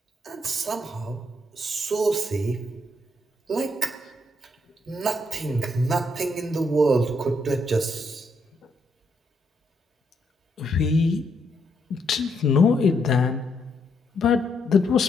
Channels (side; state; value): both; normal; correlation 0.76